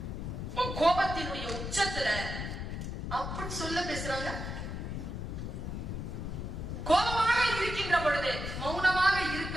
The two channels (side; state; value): left; noise; rumble, 5 dB below the sound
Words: கோபத்தினுடைய உச்சத்துல அப்படி சொல்ல பேசுறாங்க. கோபமாக இருக்கின்ற பொழுது மௌனமாக